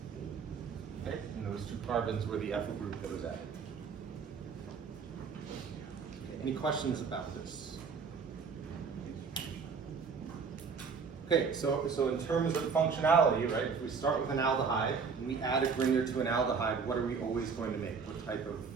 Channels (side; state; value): left; quieter; 5.6 dB